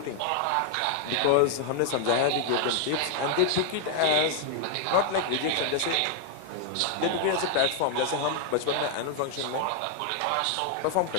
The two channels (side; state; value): both; different; correlation 0.00